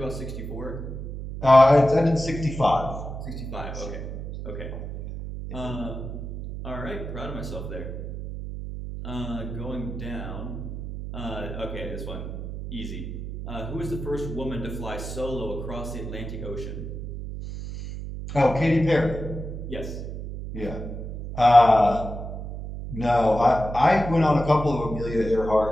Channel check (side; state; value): right; noise; hum, 7 dB below the sound